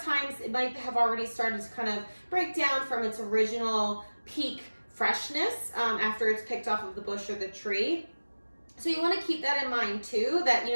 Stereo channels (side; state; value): both; inverted; correlation -1.00